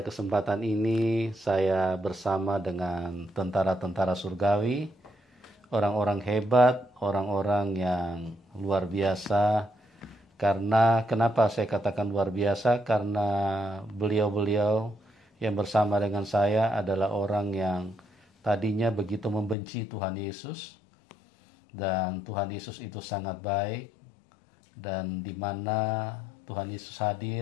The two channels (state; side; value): drops out; right; at 19.6 s